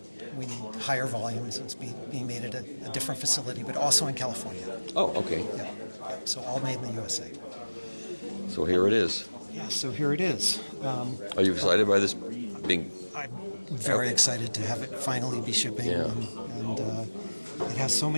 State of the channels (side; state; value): both; inverted; correlation -1.00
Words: We need higher volumes. It's being made at a different facility, but also in California. Oh, okay. Yeah. So all made in the USA. So here it is. Yeah, so here it is. Are you excited by this being? I'm very excited to have it finally be shipping. Yeah. And it has so